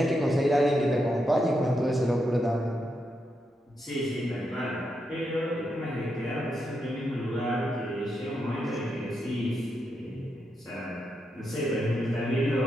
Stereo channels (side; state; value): both; normal; correlation 0.83